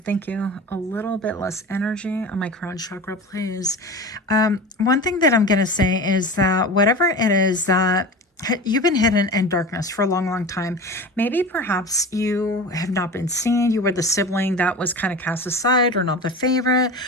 thank you. A little bit less energy on my crown chakra, please. One thing that I'm going to say is that whatever it is that you've been hidden in darkness for a long, long time. Maybe perhaps you have not been seen. You were the sibling that was kind of cast aside, or not the favorite,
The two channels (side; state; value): both; normal; correlation 0.31